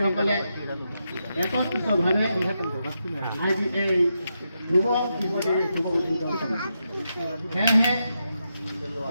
একত্রিতভাৱে আজি এই শুভ দিৱসৰ শুভ উদ্বোধন কৰিছে। সেয়েহে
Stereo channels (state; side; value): inverted; both; correlation -0.85